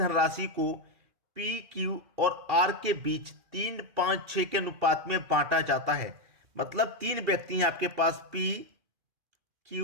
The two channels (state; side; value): late; left; 2.4 ms